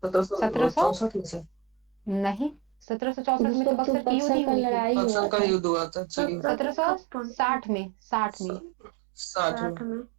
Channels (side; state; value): left; drops out; at 2.9 s